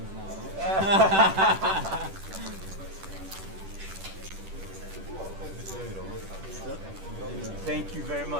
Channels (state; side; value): late; left; 10 ms